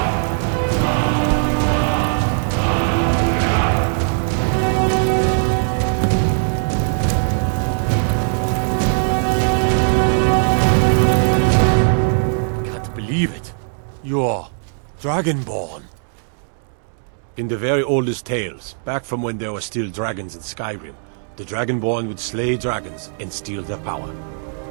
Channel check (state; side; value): silent; left; 66 dB below the other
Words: Believe it. You're Dragonborn. In the very oldest tales, back from when there were still dragons in Skyrim, the Dragonborn would slay dragons and steal their power.